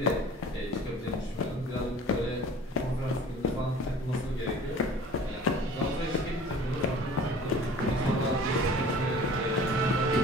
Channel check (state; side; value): normal; both; correlation 0.46